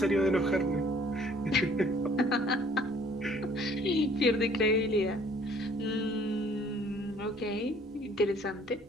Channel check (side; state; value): both; normal; correlation 0.58